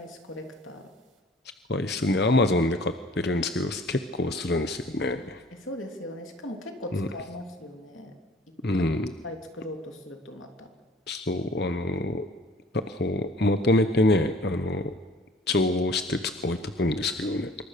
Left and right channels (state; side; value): normal; both; correlation 0.52